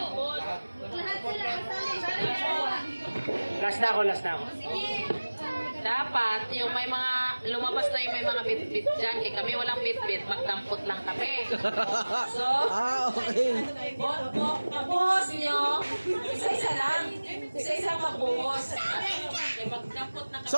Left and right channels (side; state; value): both; inverted; correlation -1.00